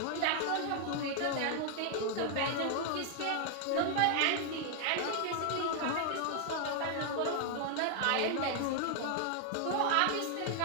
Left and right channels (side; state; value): both; different; correlation 0.00